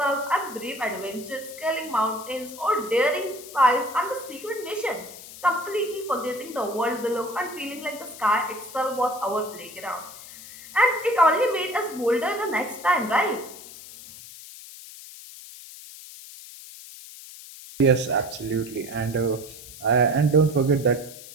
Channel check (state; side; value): noise; left; hiss, 16 dB below the sound